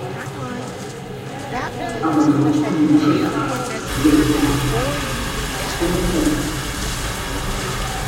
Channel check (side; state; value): both; identical; correlation 1.00